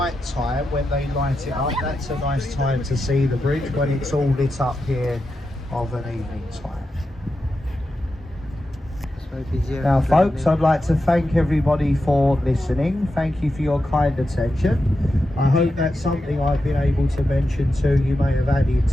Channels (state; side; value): normal; both; correlation 0.89